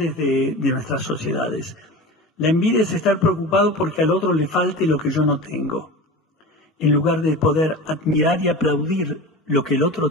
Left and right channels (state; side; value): normal; both; correlation 0.31